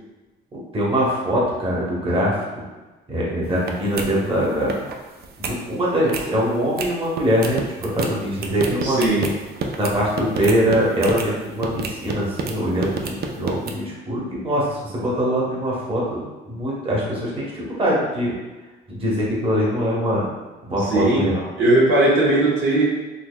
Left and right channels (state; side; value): normal; both; correlation 0.44